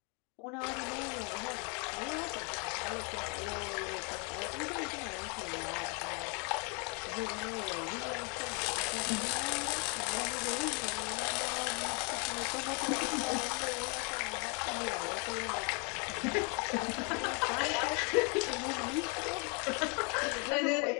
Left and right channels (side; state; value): right; quieter; 34.8 dB